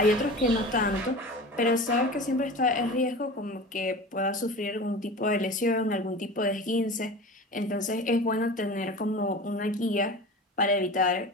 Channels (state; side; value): normal; both; correlation 0.34